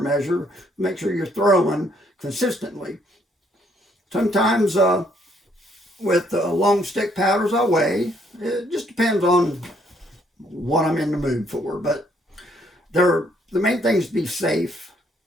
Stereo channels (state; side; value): normal; both; correlation 0.68